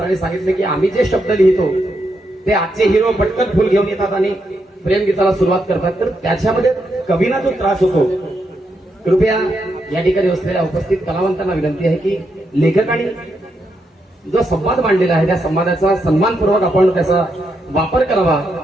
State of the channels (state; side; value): normal; both; correlation 0.81